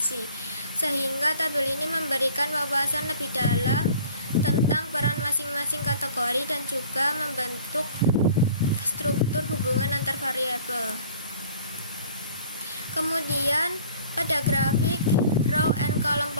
sehingga tabel ini memberikan wawasan lebih dalam tentang peran masing-masing kategori dan juga membentuk struktur hubungan antar variabel. Kemudian pada grafik row and column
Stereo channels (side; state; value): both; inverted; correlation -0.50